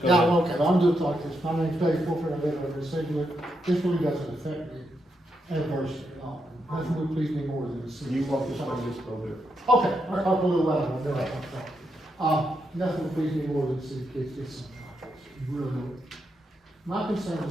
Yeah, ahead. okay, I'm just like this, my name's Dave Fulford, I live over in Siglet, this really doesn't affect me adversely at all. Nothing would please me more than to see. You walk this way, just go there. Okay, I'll talk a little louder, I'll do it. Nothing would please me more than to see kids get some tacos, you really would. My concern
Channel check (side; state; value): both; normal; correlation 0.82